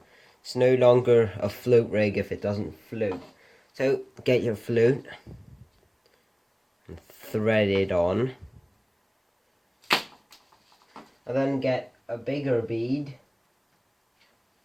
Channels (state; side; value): identical; both; correlation 1.00